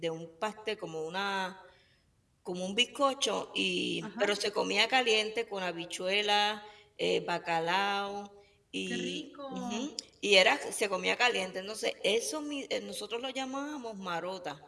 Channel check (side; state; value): both; identical; correlation 1.00